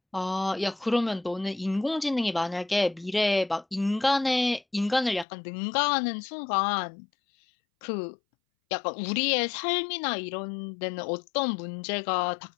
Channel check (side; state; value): right; drops out; at 5.2 s